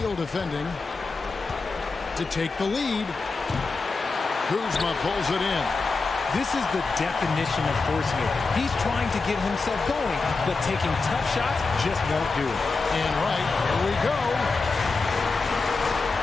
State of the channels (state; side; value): quieter; right; 4.1 dB